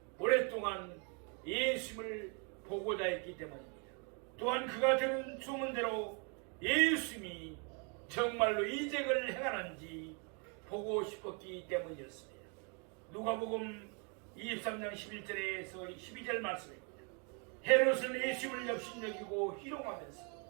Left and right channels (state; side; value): quieter; left; 36.1 dB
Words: 오랫동안 예수님을 보고자 했기 때문입니다. 또한 그가 들은 소문대로 예수님이 정말로 이적을 행하는지 보고 싶었기 때문이었습니다. 누가복음 23장 11절에서 12절 말씀입니다. 헤롯은 예수님을 역신여기고 희롱하면서